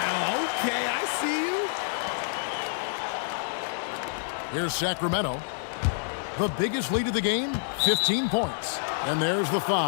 okay, I see you. Here's Sacramento. The biggest lead of the game, 15 points. And there's the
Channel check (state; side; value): silent; right; digital silence